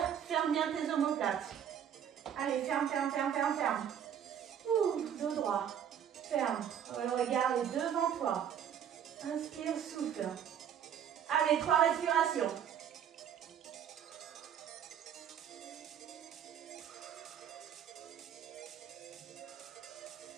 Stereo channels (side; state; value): left; quieter; 9.0 dB